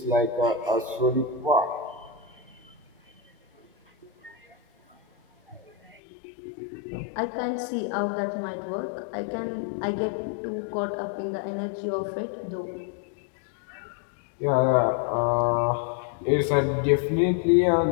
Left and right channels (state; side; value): drops out; right; at 6.0 s